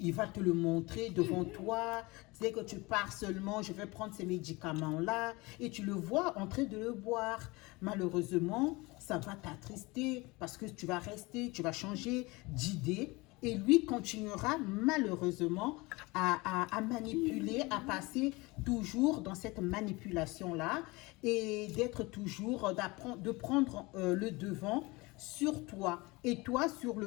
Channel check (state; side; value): quieter; right; 23.7 dB